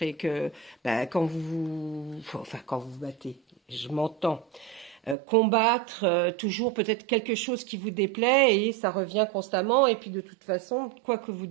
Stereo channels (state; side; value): drops out; left; at 5.2 s